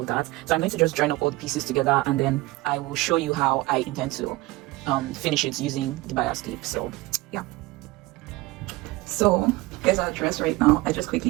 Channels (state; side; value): quieter; left; 20.7 dB